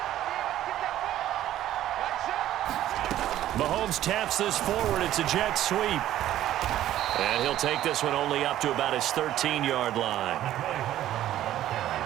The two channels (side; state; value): left; quieter; 12.9 dB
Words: Mahomes taps this forward. It's a jet sweep. And he'll take this one only up to about his 13-yard line.